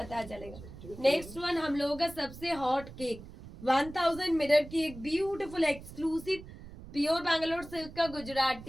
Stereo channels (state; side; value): noise; right; rumble, 15 dB below the sound